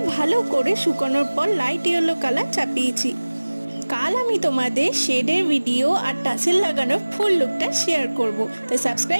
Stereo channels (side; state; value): both; inverted; correlation -1.00